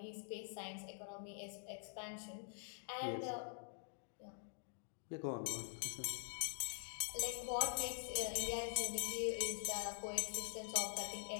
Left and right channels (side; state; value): right; silent; digital silence